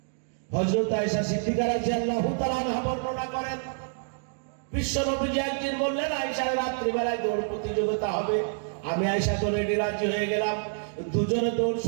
হযরত আয়েশা সিদ্দিকা রাদিয়াল্লাহু তাআলা আনহা বর্ণনা করেন, বিশ্ব নবীজি একদিন বললেন, আয়েশা রাত্রি বেলায় দৌড় প্রতিযোগিতা হবে। আমি আয়েশা তো রেডি, রাজি হয়ে গেলাম। দুজনে দৌড়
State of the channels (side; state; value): left; silent; digital silence